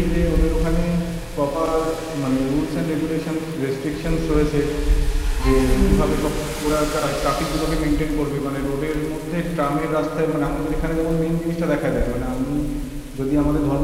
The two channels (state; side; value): identical; both; correlation 1.00